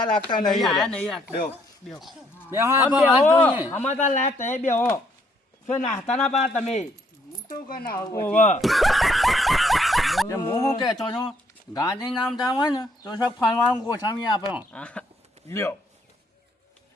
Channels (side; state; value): both; normal; correlation 0.69